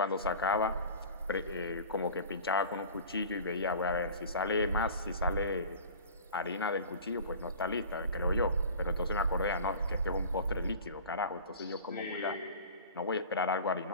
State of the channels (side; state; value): both; inverted; correlation -0.39